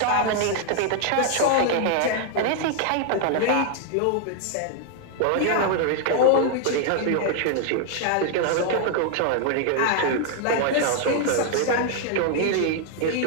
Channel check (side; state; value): both; different; correlation 0.00